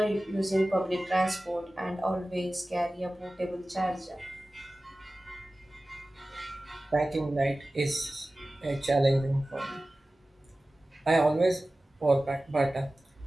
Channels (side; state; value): both; normal; correlation 0.96